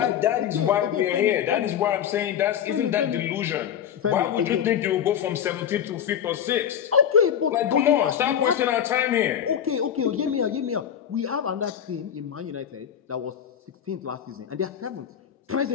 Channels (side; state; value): right; quieter; 9.1 dB